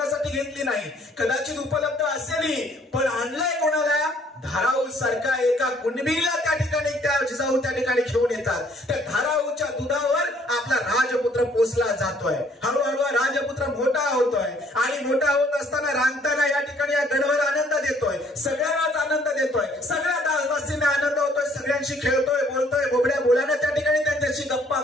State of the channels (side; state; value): both; normal; correlation 0.62